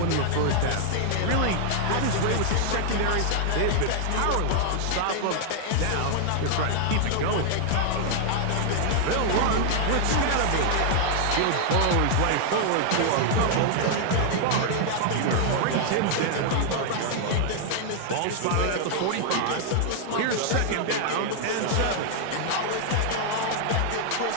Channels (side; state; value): both; different; correlation 0.00